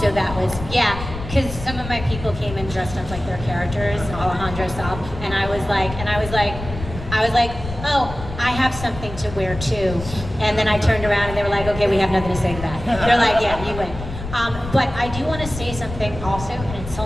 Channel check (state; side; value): noise; left; rumble, 10 dB below the sound